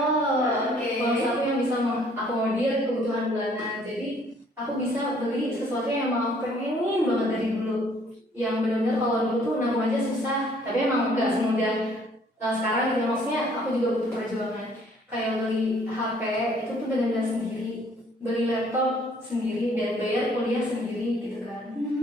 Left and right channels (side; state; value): both; normal; correlation 0.61